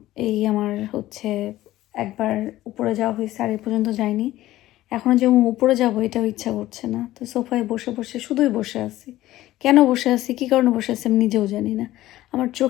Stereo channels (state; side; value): quieter; right; 15.5 dB